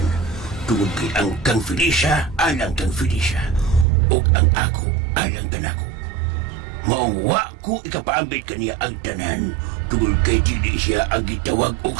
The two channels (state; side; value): drops out; left; at 3.9 s